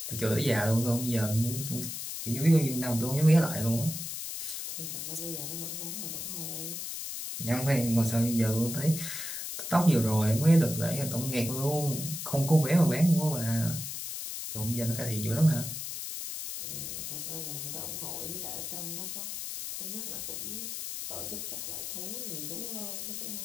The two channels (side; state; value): left; noise; hiss, 6 dB below the sound